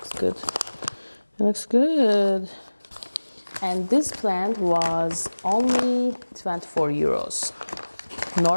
good. It looks good. And this plant was only 24 euros.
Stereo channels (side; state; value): both; inverted; correlation -1.00